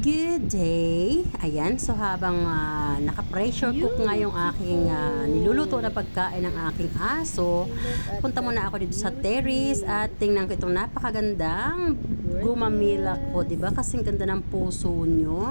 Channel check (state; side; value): inverted; both; correlation -1.00